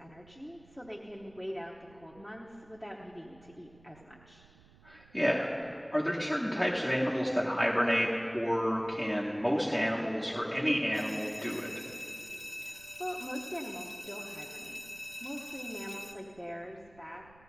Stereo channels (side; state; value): right; noise; rumble, 25 dB below the sound